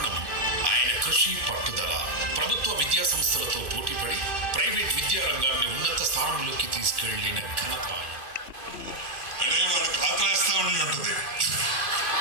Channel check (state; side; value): late; left; 2.5 ms